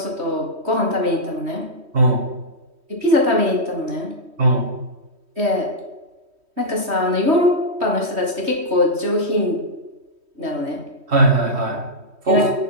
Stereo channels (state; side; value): late; left; 3.1 ms